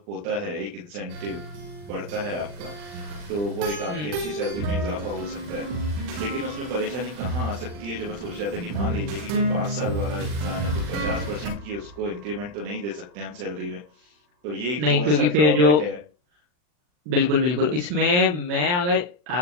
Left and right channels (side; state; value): left; late; 40 ms